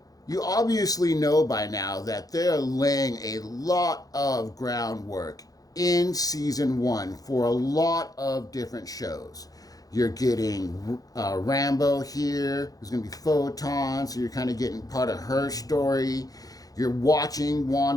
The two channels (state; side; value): late; right; 0.18 ms